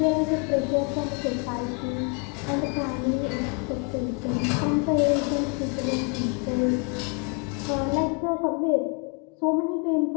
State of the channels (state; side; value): quieter; right; 34.3 dB